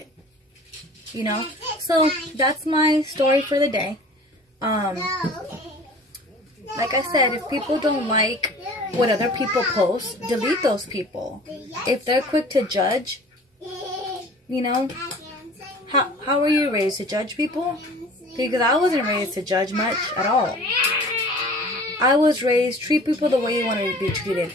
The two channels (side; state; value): both; normal; correlation 0.45